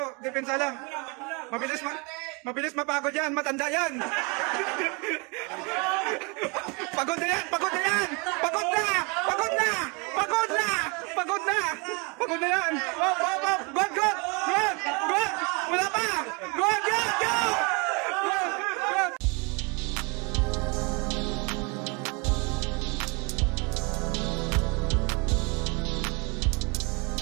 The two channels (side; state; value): left; quieter; 30.9 dB